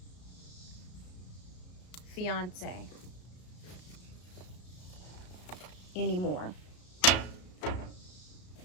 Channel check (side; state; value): right; late; 34 ms